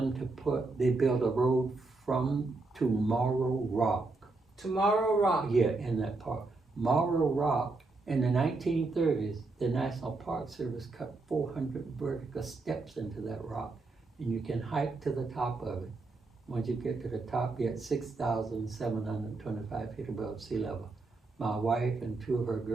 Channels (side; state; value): left; quieter; 3.5 dB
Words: they built a road to Morrow Rock. Tomorrow Rock. Yeah, in that park. Morrow Rock, in the 1930s, the National Park Service cut 400 vertical steps into that rock, and you can hike to the top of it. Once you get to the top, you're at 6,725 feet above sea level. My wife and 2 of her